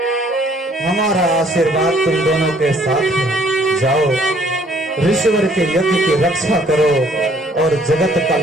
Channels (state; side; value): normal; both; correlation 0.61